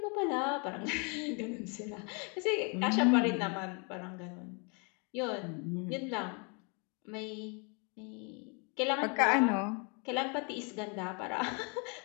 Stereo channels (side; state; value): right; quieter; 34.6 dB